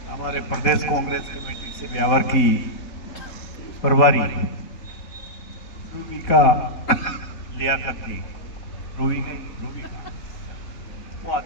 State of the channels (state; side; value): late; right; 4.1 ms